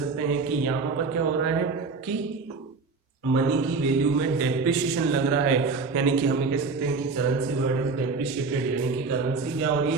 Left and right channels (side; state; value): left; quieter; 4.3 dB